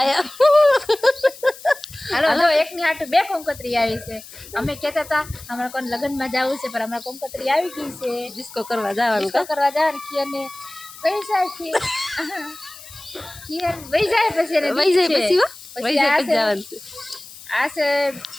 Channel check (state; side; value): noise; left; hiss, 17 dB below the sound